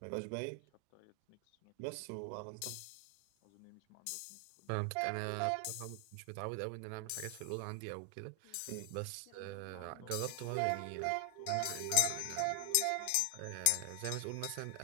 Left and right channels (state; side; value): different; both; correlation 0.00